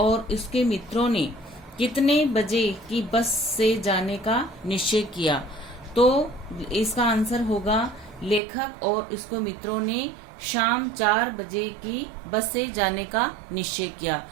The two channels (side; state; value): left; drops out; at 8.4 s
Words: उसके मित्रों ने कितने बजे की बस से जाने का निश्चय किया। तो इसका आंसर होगा लेखक और उसके मित्रों ने शाम 4 बजे की बस से जाने का निश्चय किया।